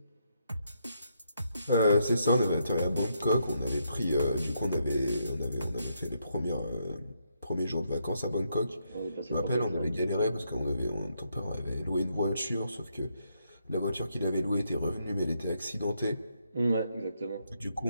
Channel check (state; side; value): inverted; both; correlation -0.78